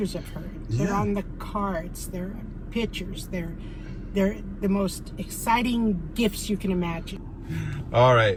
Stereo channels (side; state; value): both; identical; correlation 1.00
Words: of her. They're Yeah. on the cards. They're pictures. They're the most exciting gifts you can imagine. all